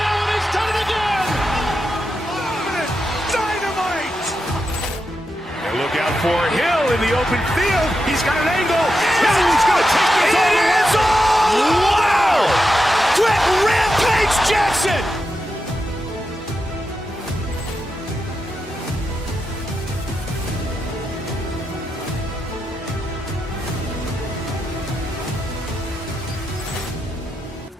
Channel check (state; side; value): normal; both; correlation 0.87